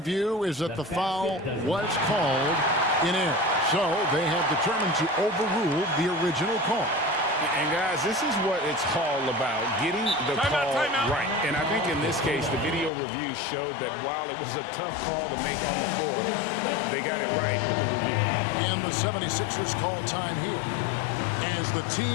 is that the foul was called in error. So they have determined to overrule the original call. And guys, this is what it's all about, getting the call right. And I think in this case, the video review showed that while it was a tough call to make on the floor, they got it right with the review. And the 76ers call time here. As the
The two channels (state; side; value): drops out; right; at 12.9 s